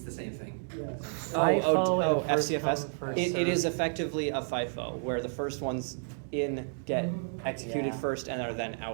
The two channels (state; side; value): silent; left; digital silence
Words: the same thing. Yes. Oh, and first FCFS. come, first It is served. effectively a FIFO, where the first ones in get executed Yeah. first and are then